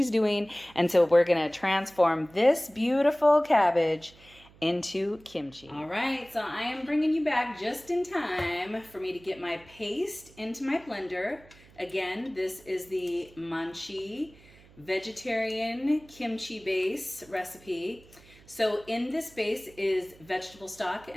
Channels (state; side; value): noise; right; hum, 25 dB below the sound